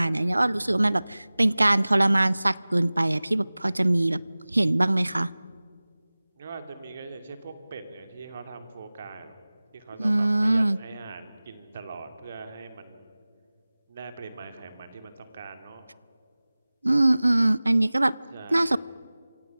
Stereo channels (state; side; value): inverted; both; correlation -0.99